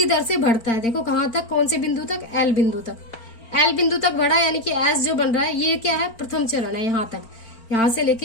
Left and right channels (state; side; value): late; right; 4.4 ms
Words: दर से बढ़ता है। देखो कहां तक, कौन से बिंदु तक, एल बिंदु तक। एल बिंदु तक बढ़ा, यानी कि एस जो बन रहा है ये क्या है, प्रथम चरण है। यहाँ तक, यहाँ से